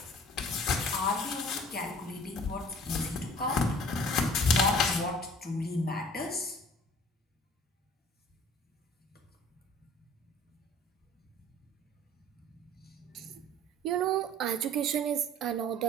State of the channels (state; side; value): normal; both; correlation 0.50